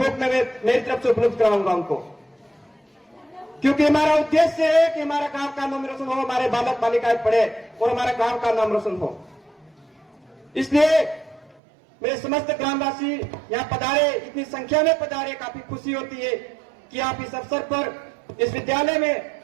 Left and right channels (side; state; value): left; drops out; at 11.6 s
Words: में मेरी तरफ से उपलब्ध कराऊंगा उनको, क्योंकि हमारा उद्देश्य है कि हमारा गांव का नाम रोशन हो, हमारे बालक बालिकाएं पढ़े और हमारे गांव का नाम रोशन हो। इसलिए मेरे समस्त ग्रामवासी यहाँ पधारे, इतनी संख्या में पधारे, काफी खुशी होती है कि आप इस अवसर पर इस विद्यालय में